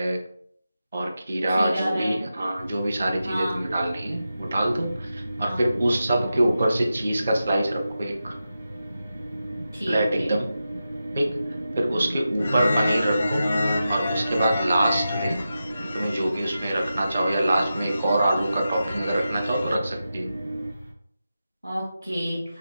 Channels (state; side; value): inverted; both; correlation -0.91